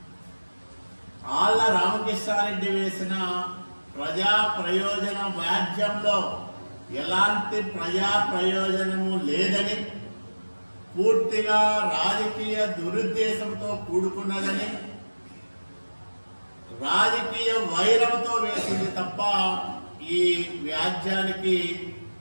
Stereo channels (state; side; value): inverted; both; correlation -1.00